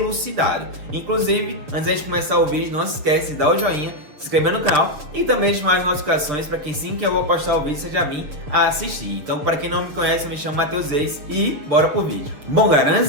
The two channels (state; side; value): late; left; 6.7 ms